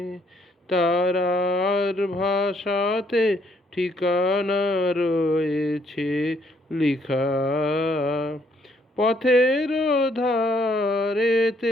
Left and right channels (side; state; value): both; normal; correlation 0.68